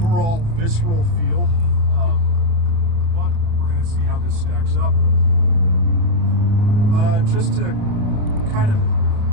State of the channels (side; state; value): left; late; 29 ms